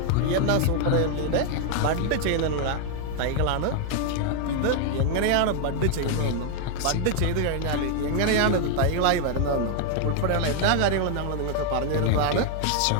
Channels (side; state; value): both; different; correlation 0.00